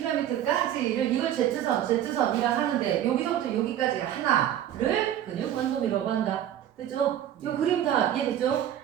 이걸 Z선이라 하는데, 여기서부터 여기까지 하나를 근육 원섬이라고 한다. 됐죠? 이 그림 다 이해됐죠?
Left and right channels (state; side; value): quieter; left; 11.0 dB